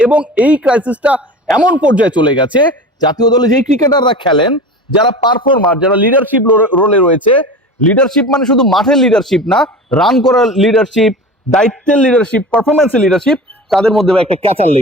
এবং এই ক্রাইসিসটা এমন পর্যায়ে চলে গেছে, জাতীয় দলে যেই ক্রিকেটাররা খেলেন, যারা পারফর্মার, যারা লিডারশিপ রোলে রয়েছে, লিডারশিপ মানে শুধু মাঠের লিডারশিপ না, রান করার লিডারশিপ, দায়িত্বের লিডারশিপ, পারফরমেন্সের লিডারশিপ, তাদের মধ্যে একটা ক্যাচার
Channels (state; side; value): normal; both; correlation 0.33